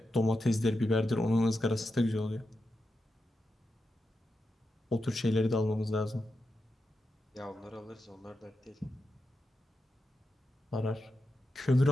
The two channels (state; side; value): normal; both; correlation 0.88